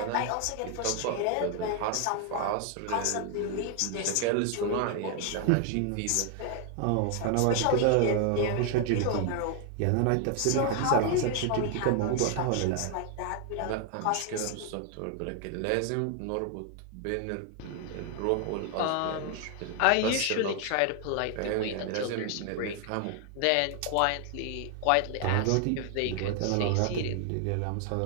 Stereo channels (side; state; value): both; different; correlation 0.00